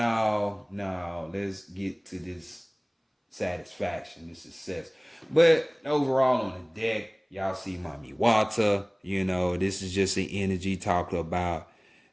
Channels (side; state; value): both; identical; correlation 1.00